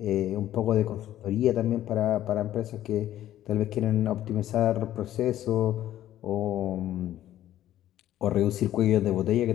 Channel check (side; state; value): right; quieter; 12.8 dB